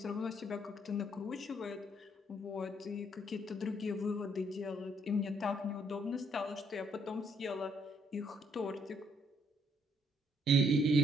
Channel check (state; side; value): normal; both; correlation 0.68